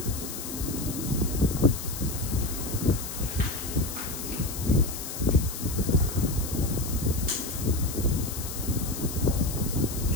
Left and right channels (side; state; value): left; noise; hiss, 8 dB below the sound